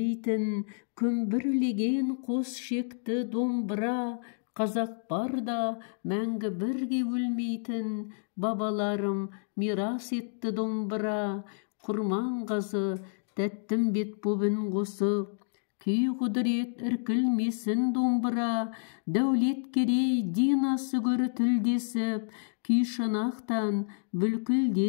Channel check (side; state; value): right; silent; digital silence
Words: күмбірлеген қос шекті домбыра, қазақ барда мәңгі бірге өлмейтін, бабаларым мирас етті домбыра, құрман қазы тәттім бет бобын қосып, күй құдырет іркілмесін домбыра, дәулет керей динасы көрі тілдесіп, күй шанақтан